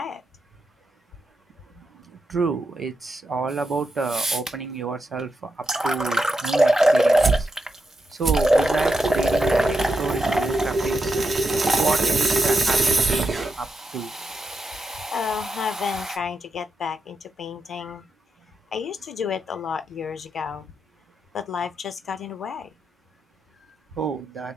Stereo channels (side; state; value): both; normal; correlation 0.86